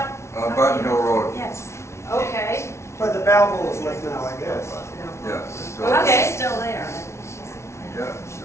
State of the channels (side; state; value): right; late; 0.13 ms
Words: on Button Hill Road. Yes. Okay. Where the Balboas live now, I guess. Yeah, still, The house Okay. is still there. yeah,